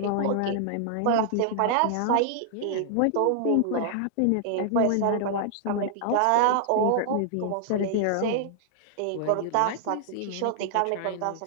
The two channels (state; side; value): different; both; correlation -0.01